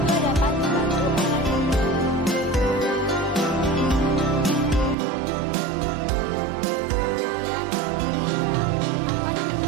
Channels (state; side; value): drops out; left; at 5.0 s